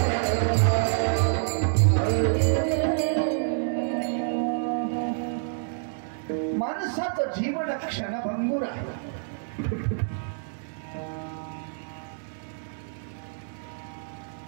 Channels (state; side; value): silent; left; digital silence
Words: माणसाचं जीवन क्षणभंगूर आहे